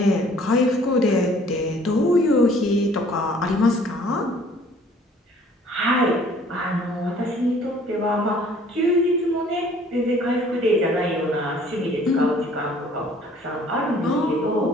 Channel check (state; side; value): normal; both; correlation 0.56